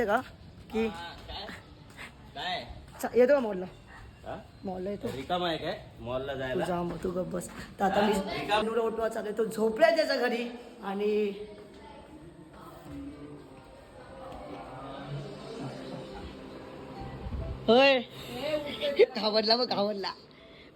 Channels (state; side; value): identical; both; correlation 1.00